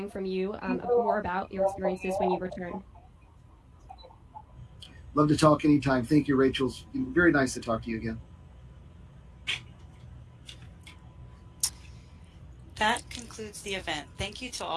from you more about your experiences when you return. Love to talk anytime. Thank you, Rachel. It's very nice to talk to you again. That concludes the event. Thank you to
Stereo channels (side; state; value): both; identical; correlation 1.00